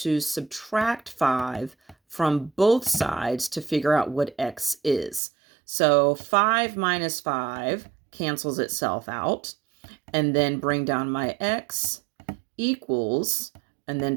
subtract 5 from both sides to figure out what x is. So 5 minus 5 cancels itself out, and then bring down my x equals, and then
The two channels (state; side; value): drops out; left; at 5.2 s